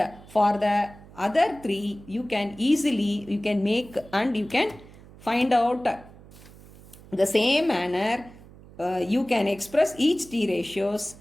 for the other 3 you can easily make and you can find out the same manner. You can express each t ratios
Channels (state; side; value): noise; right; hum, 21 dB below the sound